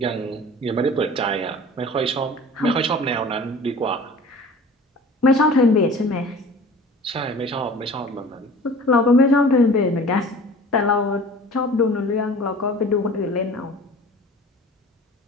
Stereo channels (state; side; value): normal; both; correlation 0.43